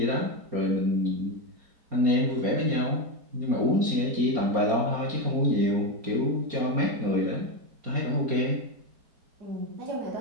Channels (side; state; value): left; late; 4.3 ms